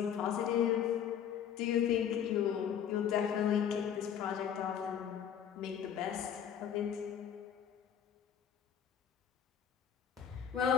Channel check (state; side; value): quieter; right; 8.8 dB